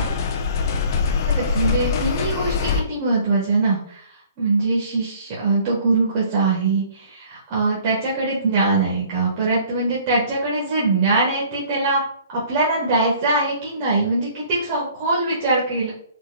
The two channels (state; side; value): inverted; both; correlation -0.54